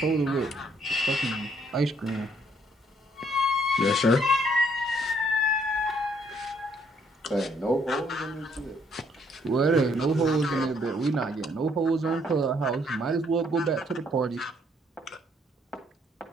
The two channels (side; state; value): both; normal; correlation 0.67